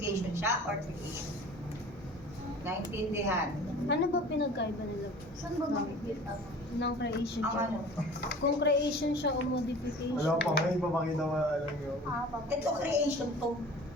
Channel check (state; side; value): normal; both; correlation 0.43